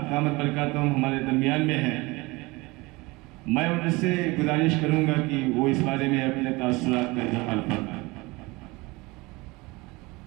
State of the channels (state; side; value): quieter; left; 23.4 dB